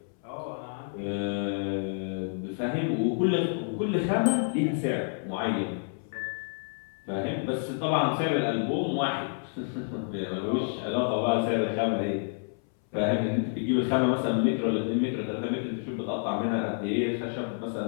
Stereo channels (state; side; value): silent; right; 59 dB below the other